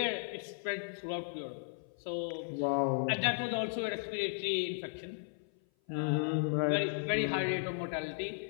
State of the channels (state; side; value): silent; right; 54 dB below the other